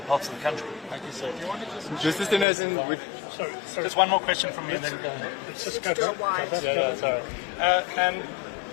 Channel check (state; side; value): drops out; right; at 2.5 s